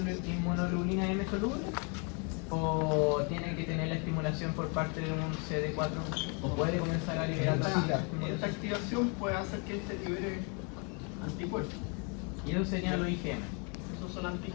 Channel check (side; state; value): right; quieter; 35.5 dB